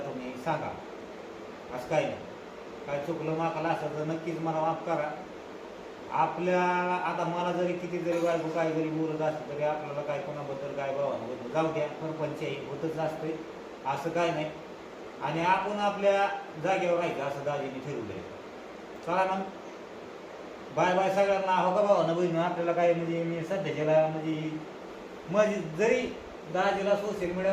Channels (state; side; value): identical; both; correlation 1.00